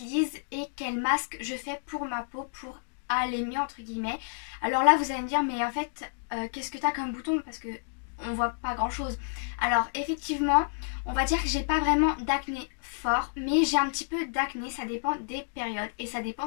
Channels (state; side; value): silent; right; digital silence